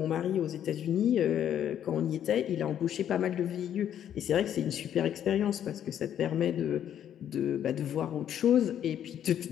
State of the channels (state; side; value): quieter; right; 10.0 dB